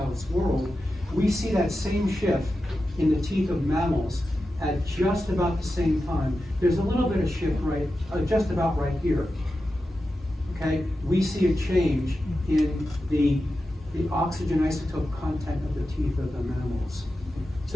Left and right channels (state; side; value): normal; both; correlation 0.91